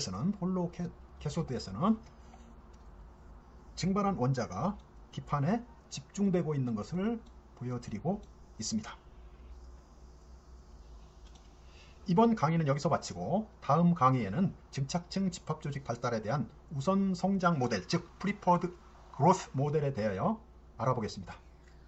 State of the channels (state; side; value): identical; both; correlation 1.00